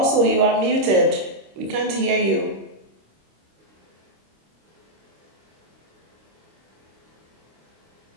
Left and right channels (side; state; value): left; late; 26 ms